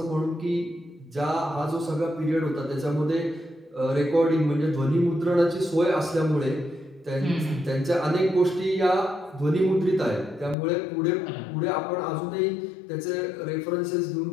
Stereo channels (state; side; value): drops out; right; at 10.6 s